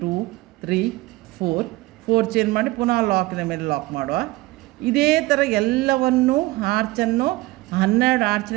2 3 4 ಚೈನ್ ಮಾಡಿ ಪುನಃ ಲಾಕಿನ ಮೇಲೆ ಲಾಕ್ ಮಾಡುವ. ಇದೇ ಥರ ಎಲ್ಲವನ್ನು ಆರ್ಚನ್ನು 12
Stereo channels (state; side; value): quieter; left; 20.1 dB